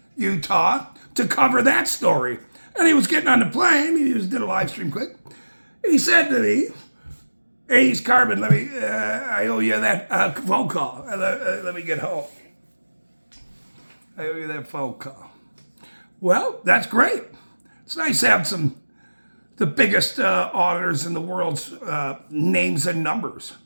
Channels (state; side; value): inverted; both; correlation -1.00